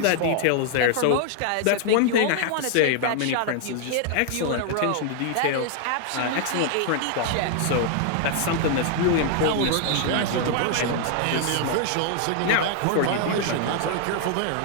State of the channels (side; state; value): both; different; correlation 0.00